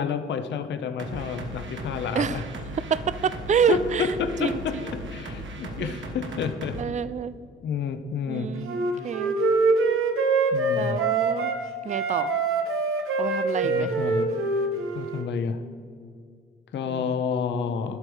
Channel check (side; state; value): both; normal; correlation 0.42